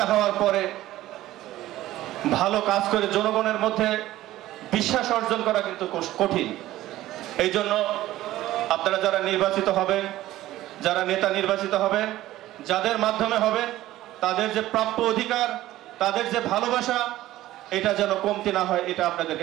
হওয়ার পরে ভালো কাজ করে জনগণের মধ্যে বিশ্বাস অর্জন করা কিন্তু কঠিন। এই জন্য আপনারা যারা নির্বাচিত হবেন, যারা নেতা নির্বাচিত হবেন, যাদের মাধ্যমে হবেন, তাদের যে প্রাপ্য অধিকার, তাদের যে ভালোবাসা, এটা যেন কমতি না হয়, এটা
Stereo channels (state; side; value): quieter; left; 15.2 dB